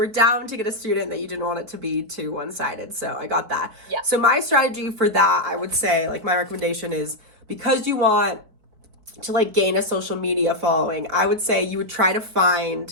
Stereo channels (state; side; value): late; left; 4.5 ms